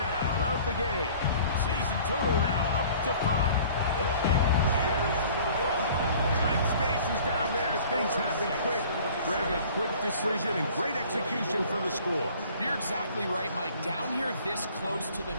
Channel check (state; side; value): inverted; both; correlation -0.50